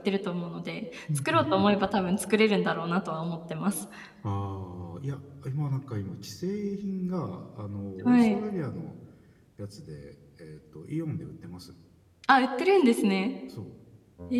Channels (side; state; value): both; identical; correlation 1.00